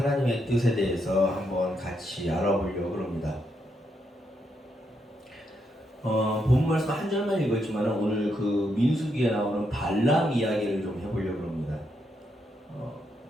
뜻에 대해서 한번 같이 알아보려고 합니다. 본 말씀 한 절만 읽었지만 오늘 그 민수기에 나오는 발람 이야기를 좀 해보려고 합니다.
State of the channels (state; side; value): normal; both; correlation 0.79